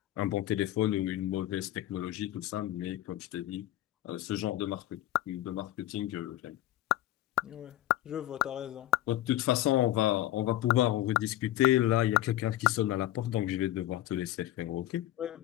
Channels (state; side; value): quieter; right; 14.2 dB